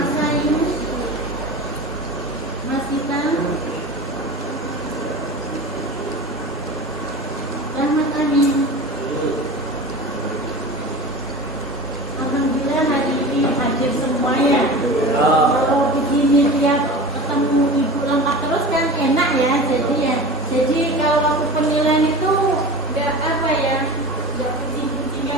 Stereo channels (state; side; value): normal; both; correlation 0.33